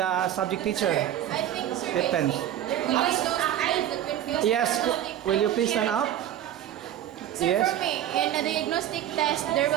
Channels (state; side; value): quieter; left; 11.4 dB